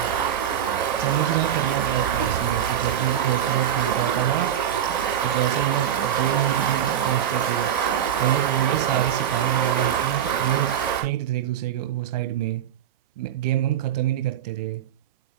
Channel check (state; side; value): quieter; left; 10.0 dB